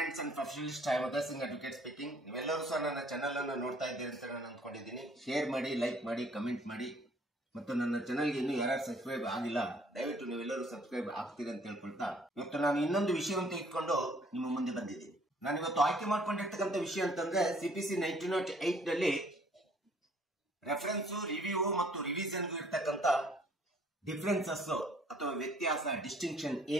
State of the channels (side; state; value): both; normal; correlation 0.60